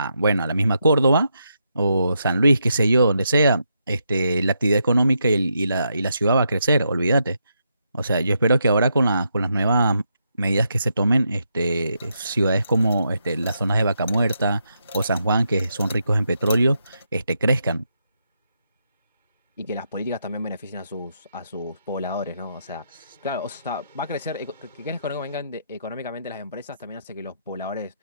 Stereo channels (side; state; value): both; inverted; correlation -0.81